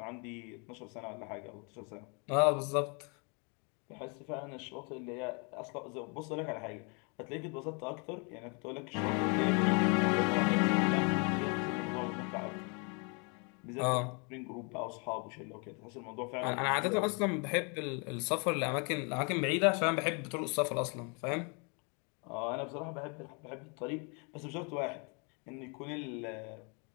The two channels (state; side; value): quieter; right; 34.2 dB